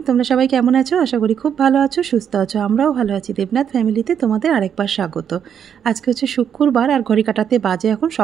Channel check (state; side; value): quieter; left; 8.3 dB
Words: তোমরা সবাই কেমন আছো? আশা করি খুব ভালো আছো, সুস্থ আছো। আমরাও ভালো আছি। দেবনাথ ফ্যামিলিতে তোমাদের আরেকবার স্বাগত। আজকে হচ্ছে শুক্রবার আর ঘড়ি কাটাতে বাজে এখন